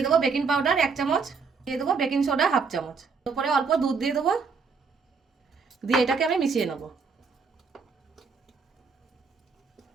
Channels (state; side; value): quieter; left; 5.1 dB